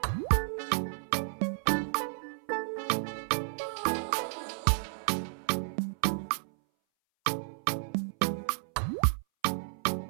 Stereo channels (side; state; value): left; silent; 56 dB below the other